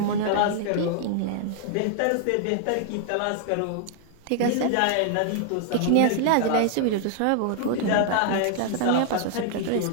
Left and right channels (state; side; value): different; both; correlation -0.01